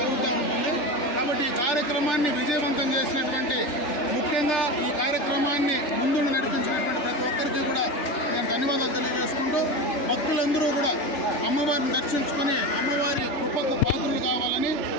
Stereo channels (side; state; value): right; late; 3.4 ms